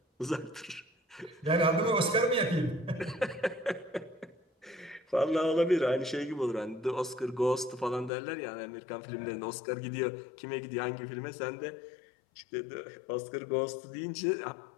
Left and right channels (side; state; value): right; drops out; at 8.1 s